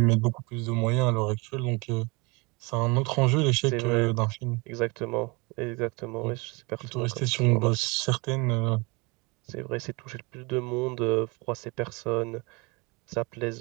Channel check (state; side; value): quieter; left; 27.5 dB